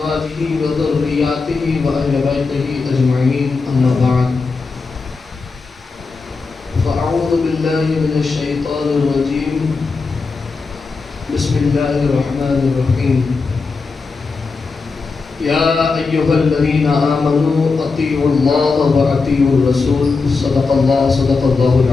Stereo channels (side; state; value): right; quieter; 4.4 dB